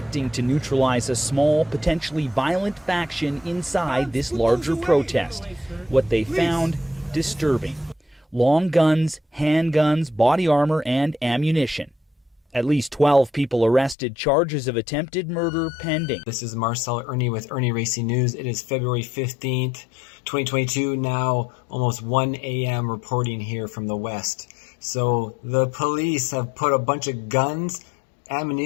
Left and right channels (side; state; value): right; drops out; at 14.0 s